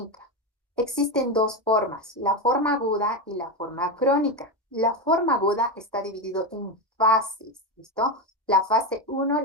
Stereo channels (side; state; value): both; normal; correlation 0.13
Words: Existen dos formas, la forma aguda y la forma crónica. La forma aguda está dividido en fases, ¿listo? La fase uno,